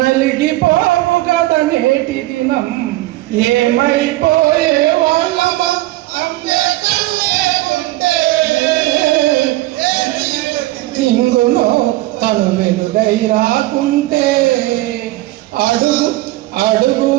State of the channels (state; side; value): quieter; left; 17.9 dB